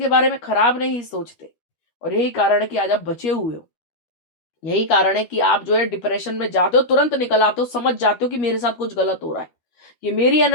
बारे में खराब नहीं सोचते। और यही कारण है कि आज आप बचे हुए हो। यही कारण है कि आप जो है डिप्रेशन में जाते हो, तुरंत निकल आते हो, समझ जाते हो कि मेरे साथ कुछ गलत हो रहा है, ये मेरी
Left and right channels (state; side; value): late; right; 12 ms